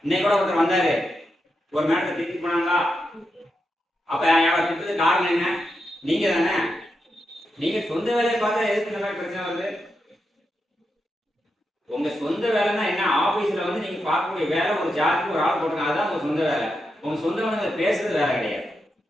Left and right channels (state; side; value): normal; both; correlation 0.86